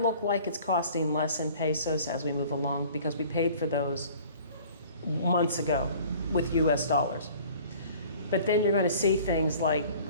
look like it's costing less in pesos as we move along because we paid for those months ago with US dollars. But then you're going to see things like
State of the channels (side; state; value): both; inverted; correlation -0.49